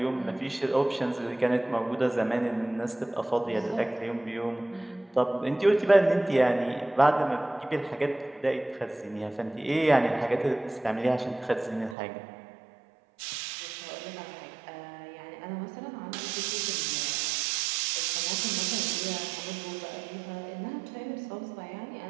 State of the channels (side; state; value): left; drops out; at 12.0 s